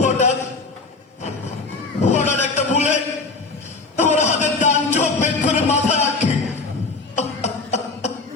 হঠাৎ হঠাৎ একটা বুলেট আমার হাতের ডান চোখ বের করে মাথা রাখে।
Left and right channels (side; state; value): right; quieter; 3.8 dB